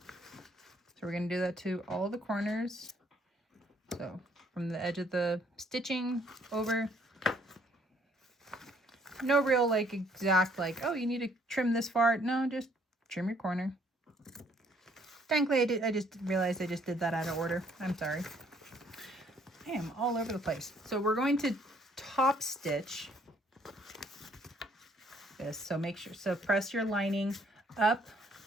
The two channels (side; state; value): both; normal; correlation 0.64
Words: So we're going to do that to all the corners. So from the edge of the stitching over No real like exact like, oh, you need to trim this far. No, just trim your corner. Thankfully, I just realized I just did that out of order. I'm sorry. I am all over the place. So we're going to top stitch this. So make sure, so press your lining up,